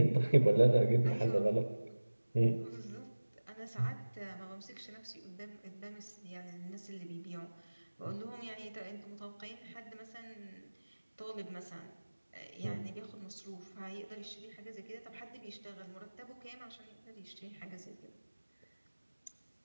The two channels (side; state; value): both; inverted; correlation -1.00